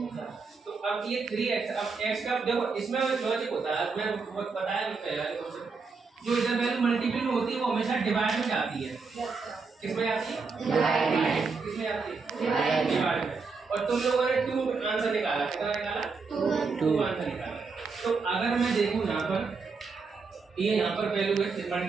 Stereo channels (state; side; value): quieter; left; 4.7 dB